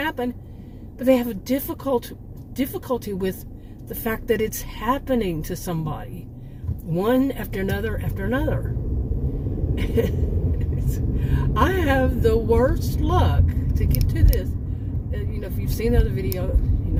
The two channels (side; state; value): both; identical; correlation 1.00